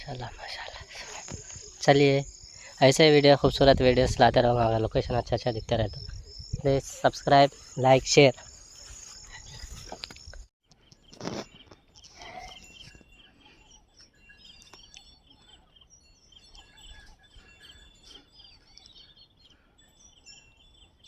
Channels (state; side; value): identical; both; correlation 1.00